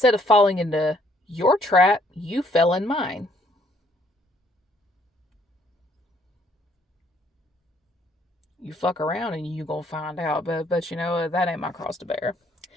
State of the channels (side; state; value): both; normal; correlation 0.66